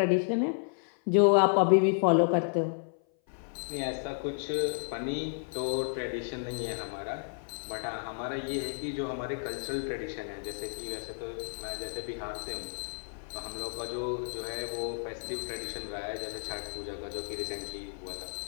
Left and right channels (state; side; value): silent; right; 56 dB below the other